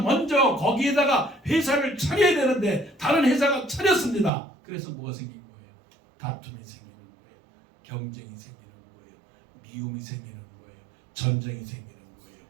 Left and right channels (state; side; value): drops out; left; at 4.3 s